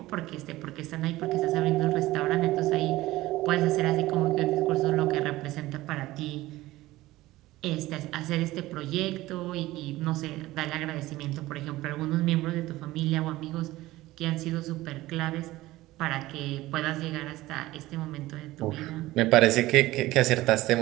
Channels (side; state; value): left; quieter; 17.5 dB